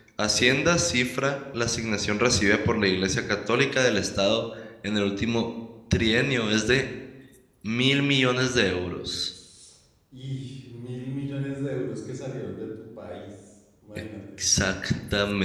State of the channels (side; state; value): both; identical; correlation 1.00